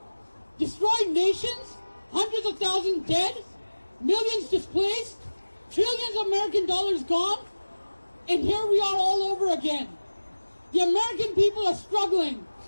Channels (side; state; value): both; inverted; correlation -1.00